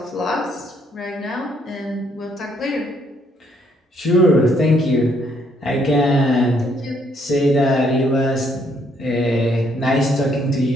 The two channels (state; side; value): normal; both; correlation 0.69